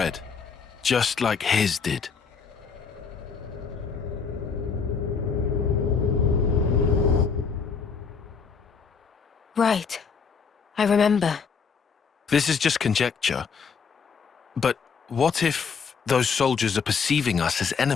just like his did. Right. I remember. This is just conjecture. But what if those soldiers are perceiving us as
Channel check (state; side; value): quieter; right; 5.8 dB